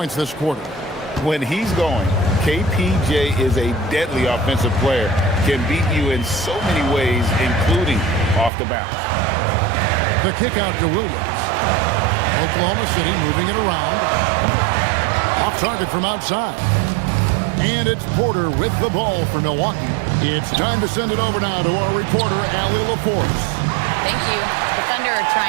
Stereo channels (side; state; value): left; drops out; at 8.5 s